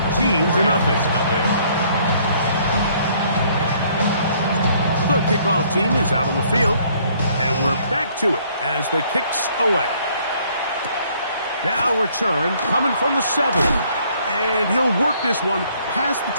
The kickoff team is out on the field. And we're back to it as the kick's away. Now return coming from the 7. And he'll work this one past the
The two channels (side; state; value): both; inverted; correlation -0.63